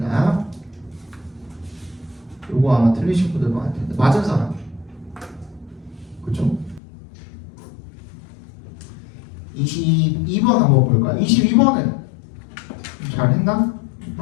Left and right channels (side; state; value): right; drops out; at 6.8 s